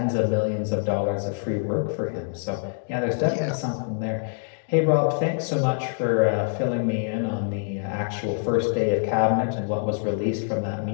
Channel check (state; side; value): silent; right; digital silence